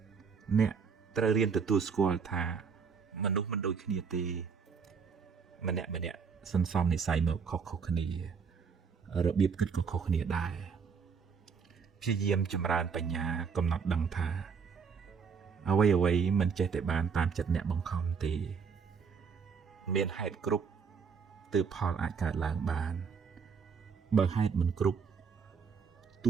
អ្នកត្រូវរៀនទទួលស្គាល់ថាមនុស្សមិនដូចគ្នាទេម្នាក់សន្សំនិស័យមកខុសគ្នារបៀបគិតក៏ខុសគ្នាដែរព្យាយាមចម្រើនបញ្ញាកំណត់ដឹងថាអ្វីមិនចេះតែបានតាមចិត្តអ្នកបង្ខំទេមានហេតុគ្រប់ទើបផលអាចកើតឡើងបានបើហេតុមិនគ្រប់ទ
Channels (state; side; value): quieter; left; 5.9 dB